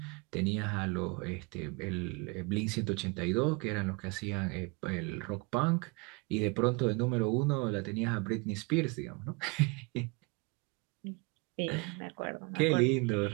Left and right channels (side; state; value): left; quieter; 28.6 dB